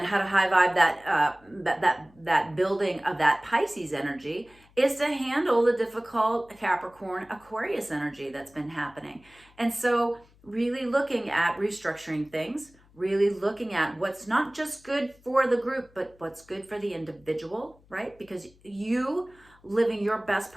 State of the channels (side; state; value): left; noise; hum, 29 dB below the sound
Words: how to high vibe that building of that Pisces energy is to handle the difficult Capricorn Aquarius energy that's been happening. And so really looking at restructuring things, really looking at what's not just good for the group, but what's good for the individual, right? Because you living your best